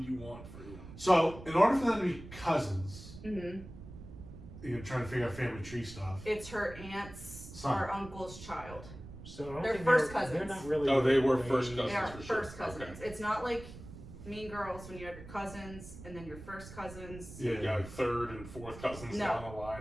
you want for you. So, in order for them to be cousins, Mm-hmm. you're trying to figure out family tree stuff. It's her aunt's Son. or uncle's child. So I don't They're think first They're cousins. not really. Oh, they were first They cousins. are for sure. first cousins. Okay. It's not like Mean Girls when you have your cousins and then your first cousins. Yeah. Yeah, like third and fourth cousins No, down the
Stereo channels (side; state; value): right; noise; rumble, 14 dB below the sound